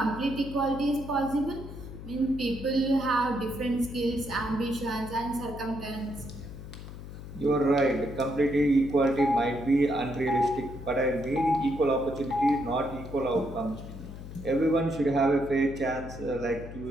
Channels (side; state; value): left; noise; hum, 12 dB below the sound